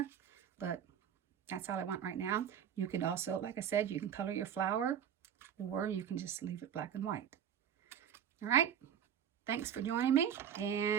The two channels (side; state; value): left; quieter; 8.9 dB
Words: but that's all I want right now. You can also, like I said, you can color your flower or you can just leave it black and white. All right. Thanks for joining me,